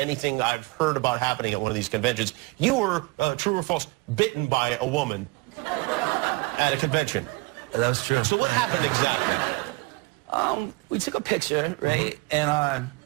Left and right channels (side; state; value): left; quieter; 25.5 dB